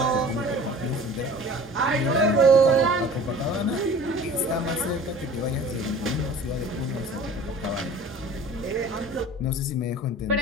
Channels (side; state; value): both; normal; correlation 0.44